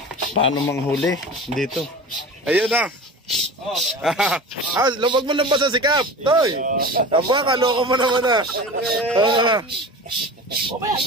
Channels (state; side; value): normal; both; correlation 0.34